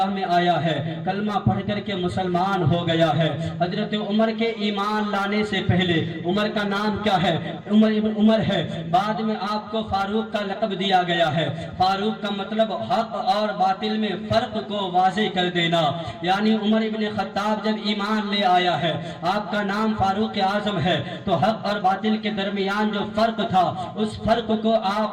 میں آیا ہے، کلمہ پڑھ کر کے مسلمان ہو گیا ہے. حضرت عمر کے ایمان لانے سے پہلے عمر کا نام کیا ہے؟ عمر ابن عمر ہے. بعد میں آپ کو فاروق کا لقب دیا گیا ہے. فاروق کا مطلب حق اور باطل میں فرق کو واضح کر دینا. یعنی عمر ابن خطاب جب ایمان لے آیا ہے، آپ کا نام فاروق اعظم ہے، تو حق اور باطل کے درمیان جو فرق تھا اس فرق کو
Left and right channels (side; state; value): both; identical; correlation 1.00